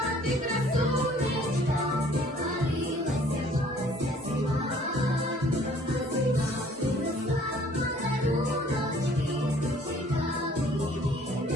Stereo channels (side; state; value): both; normal; correlation 0.56